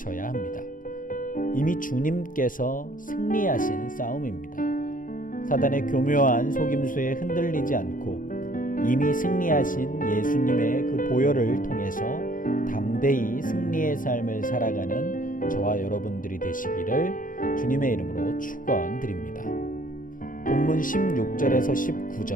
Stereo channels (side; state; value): right; late; 0.39 ms